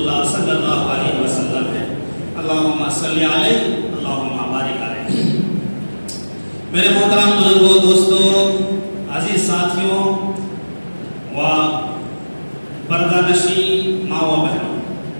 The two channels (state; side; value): inverted; both; correlation -1.00